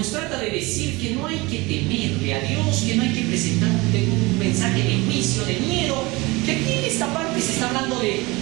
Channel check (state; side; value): quieter; left; 23.3 dB